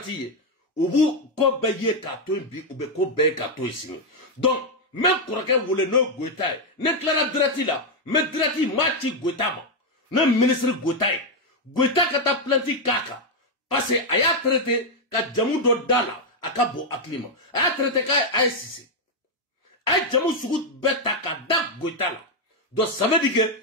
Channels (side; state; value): both; normal; correlation 0.01